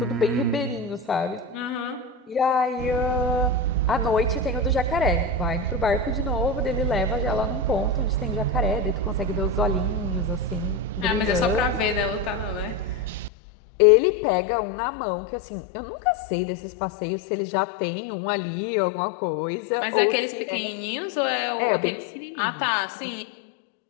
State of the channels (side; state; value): right; drops out; at 13.3 s